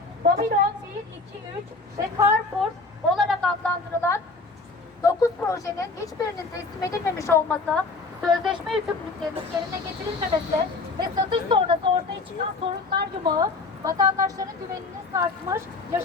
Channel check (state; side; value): quieter; right; 3.7 dB